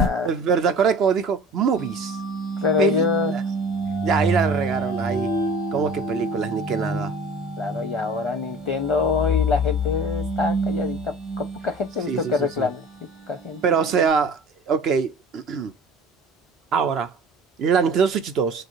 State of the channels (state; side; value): normal; both; correlation 0.43